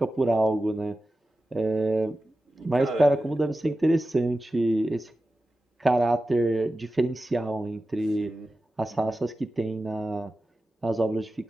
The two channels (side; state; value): both; normal; correlation 0.94